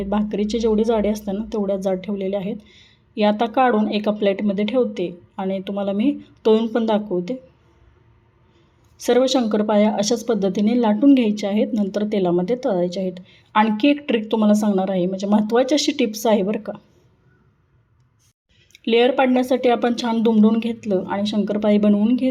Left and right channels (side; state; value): both; identical; correlation 1.00